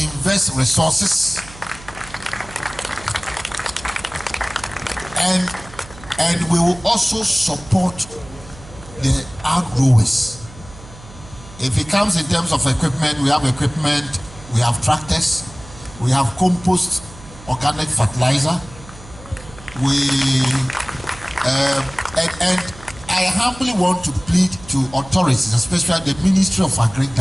resources, and we will also support the outgrowers. If it comes in terms of equipment, we have equipment, we have tractors, we have compost, organic fertilizer, and I humbly want to plead to authorities, especially the Ministry of Agri,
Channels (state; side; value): noise; right; hum, 18 dB below the sound